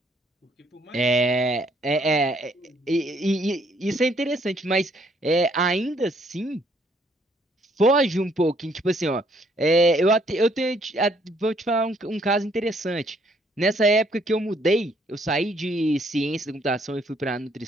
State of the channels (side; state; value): both; normal; correlation 0.67